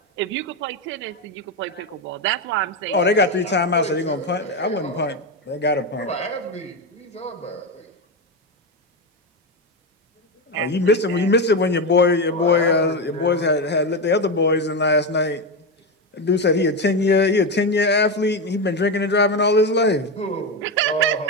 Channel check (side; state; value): both; normal; correlation 0.13